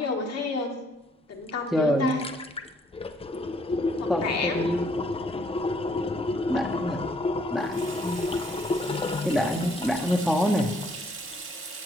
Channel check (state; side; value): normal; both; correlation 0.66